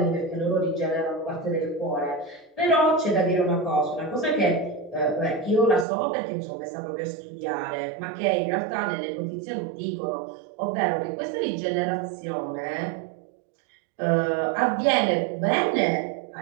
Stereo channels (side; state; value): left; drops out; at 5.9 s